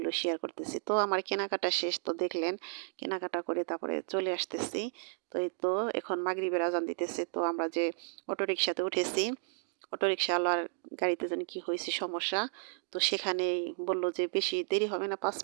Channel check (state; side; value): silent; left; digital silence